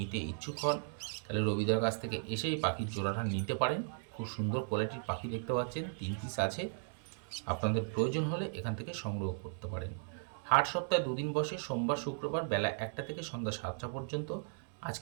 ইচ্ছুক হন তাহলে রবিদার কাছ থেকে এসেই পাখির জোড়াটা নিতে পারেন। খুব সুন্দর কোয়ালিটির পাখি দেখতে পাচ্ছেন, 3 পিস আছে। আপনাদের প্রয়োজন হলে এখান থেকে সংগ্রহ করতে পারেন। হাট সপ্তাহে 2 দিন বসে, সোমবার শুক্রবার বেলা 1টা থেকে সন্ধ্যা 7টা পর্যন্ত।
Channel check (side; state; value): left; silent; 54 dB below the other